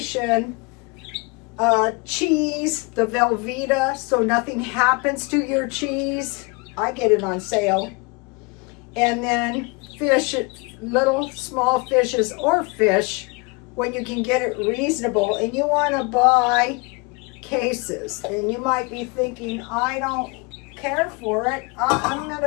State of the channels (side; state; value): right; quieter; 29.2 dB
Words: Cheese, the Velveeta, so nothing happens to your cheese. I get it on sale. And then fish, little small fishes or fish when you can get it reasonable, and you want to buy cases. And you might be thinking, I don't care for it. I'm not